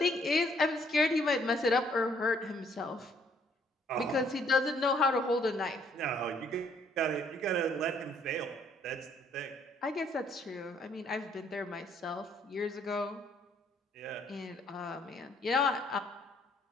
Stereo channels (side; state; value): both; normal; correlation 0.65